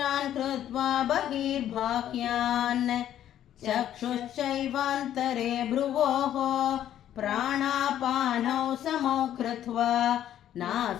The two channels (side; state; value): right; quieter; 11.2 dB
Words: कृत्वा बहिर्बाह्यान् चक्षुश्चैवान्तरे भ्रुवोः प्राणापानौ समौ कृत्वा